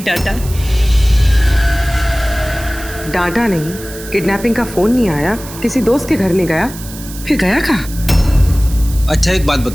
डांटा। डांटा नहीं, किडनैपिंग का फोन नहीं आया, किसी दोस्त के घर नहीं गया, फिर गया कहाँ? अच्छा एक बात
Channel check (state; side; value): noise; right; hiss, 15 dB below the sound